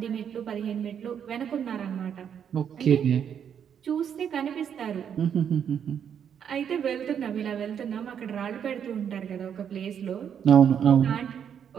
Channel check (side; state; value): left; quieter; 8.3 dB